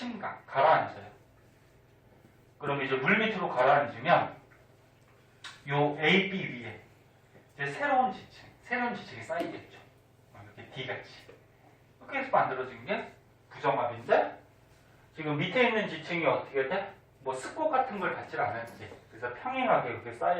가라앉아요. 그럼 이제 물 밑으로 가라앉으면 요 A, B 위에 이제 새로운 지층이 쌓이겠죠. 이렇게 D같이. 이렇게 해서 만들어진 게 부정합인데 지금 밑에 있는 지층이 어떻게 돼? 뭐 습곡 같은 걸 받질 않았지. 그래서 평행하게 이렇게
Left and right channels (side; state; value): both; identical; correlation 1.00